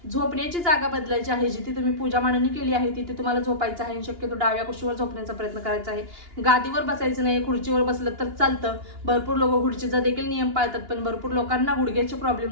झोपण्याची जागा बदलायची आहे. जिथे तुम्ही पूजा मांडणी केली आहे तिथे तुम्हाला झोपायचं आहे. शक्यतो डाव्या कुशीवर झोपण्याचा प्रयत्न करायचा आहे. गादीवर बसायचं नाही. खुर्चीवर बसलं तर चालतं. भरपूर लोक खुर्चीचा देखील नियम पाळतात, पण भरपूर लोकांना गुडघ्याचे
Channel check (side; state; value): left; late; 2.8 ms